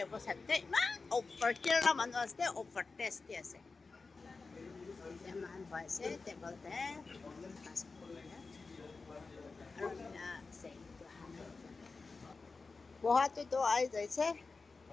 অৱস্থাতে ইমান অফাৰ কেৰেলা মানুহ আছে অফাৰ টেষ্টি আছে এতিয়া মান পাইছে টেবলতে আৰু আছে পোহাটোতো আহি যাইছে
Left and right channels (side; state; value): right; quieter; 4.1 dB